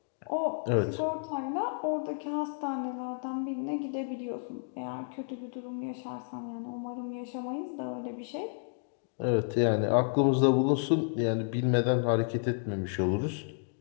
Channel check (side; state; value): right; silent; digital silence